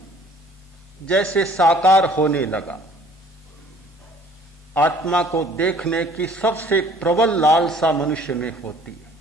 जैसे साकार होने लगा। आत्मा को देखने की सबसे प्रबल लालसा मनुष्य में होती है।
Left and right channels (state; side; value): normal; both; correlation 0.54